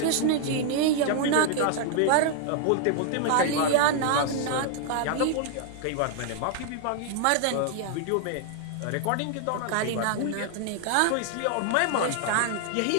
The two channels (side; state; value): both; different; correlation 0.00